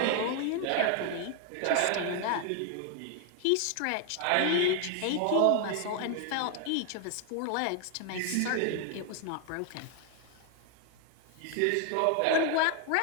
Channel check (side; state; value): both; different; correlation 0.00